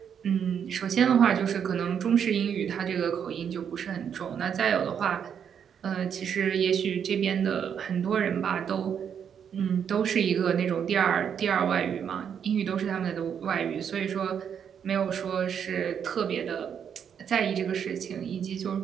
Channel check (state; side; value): quieter; left; 7.9 dB